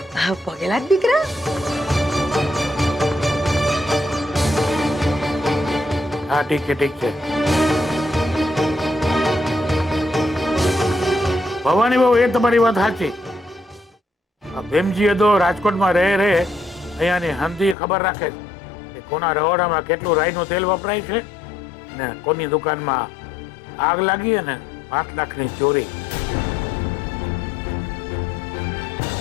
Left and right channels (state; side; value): drops out; right; at 17.8 s